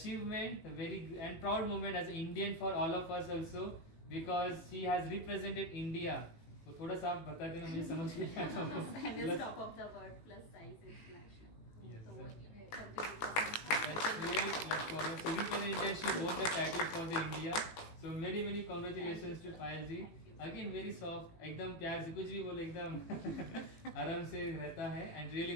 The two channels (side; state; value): right; late; 18 ms